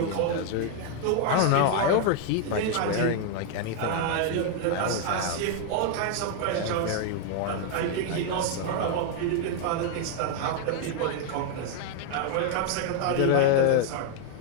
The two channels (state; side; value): different; both; correlation 0.00